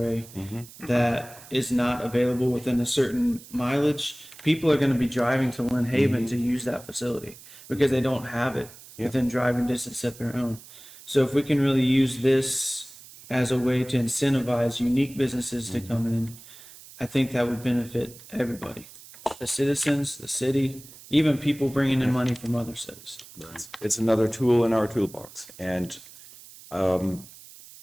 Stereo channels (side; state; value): right; noise; hiss, 19 dB below the sound